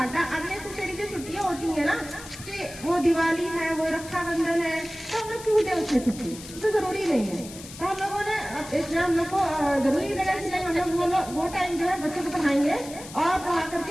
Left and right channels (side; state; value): left; noise; hiss, 15 dB below the sound